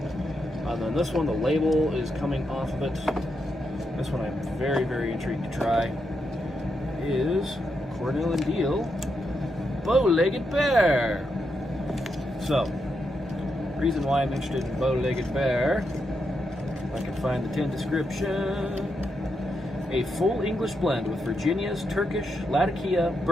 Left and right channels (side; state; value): both; normal; correlation 0.83